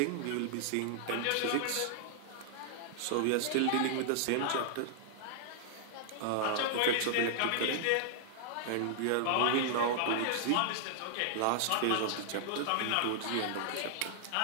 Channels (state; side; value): different; both; correlation -0.01